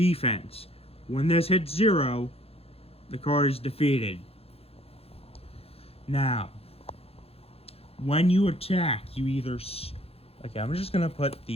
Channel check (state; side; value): late; right; 0.29 ms